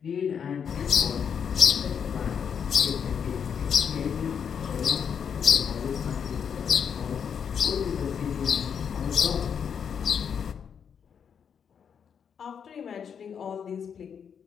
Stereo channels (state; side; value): quieter; right; 7.3 dB